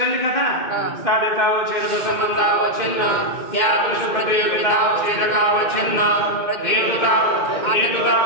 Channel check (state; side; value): late; right; 2.1 ms